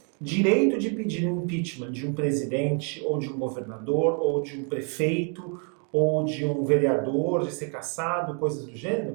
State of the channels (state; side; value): quieter; left; 39.8 dB